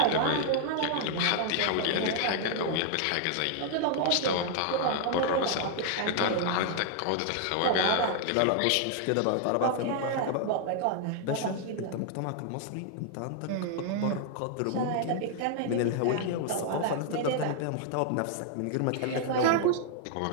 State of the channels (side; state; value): both; different; correlation -0.01